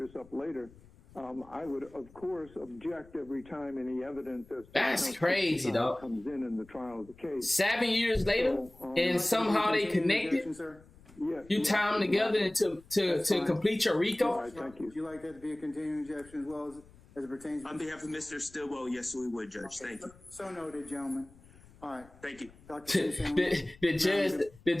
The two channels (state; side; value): noise; left; rumble, 24 dB below the sound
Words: up later. I would, of course, object every time any evidence as to That's crazy, though. comes in the trial of the case. 7 years later, and somehow they connected. Yes. You tie them together to complete your RICO. All right, thank you. Would you like that to be a continuing objection as well as it pertains to... On behalf of Mr. Stillwell, yes, we would, Judge. Thank you. So noted, gentlemen. All right. Thank you. Dr. The